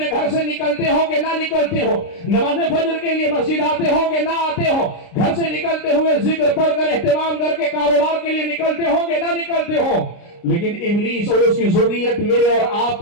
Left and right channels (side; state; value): right; late; 29 ms